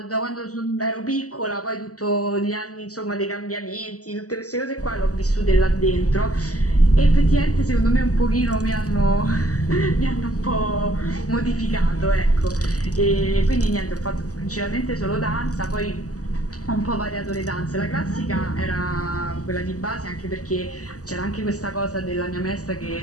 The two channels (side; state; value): right; late; 0.67 ms